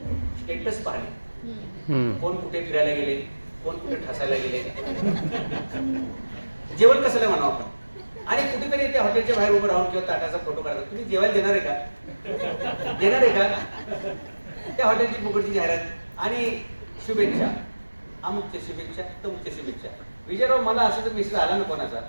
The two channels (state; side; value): inverted; both; correlation -1.00